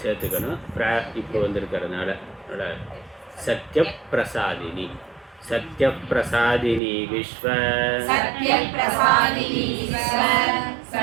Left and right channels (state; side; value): drops out; left; at 6.8 s